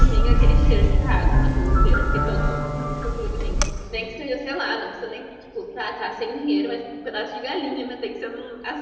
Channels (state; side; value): identical; both; correlation 1.00